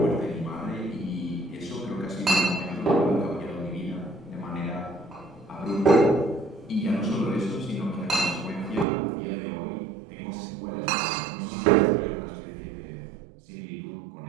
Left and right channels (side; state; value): left; drops out; at 8.8 s